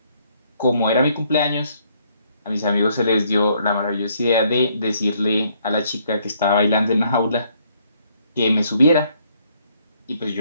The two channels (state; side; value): inverted; both; correlation -0.68